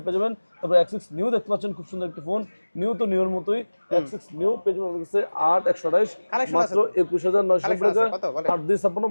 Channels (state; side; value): inverted; both; correlation -1.00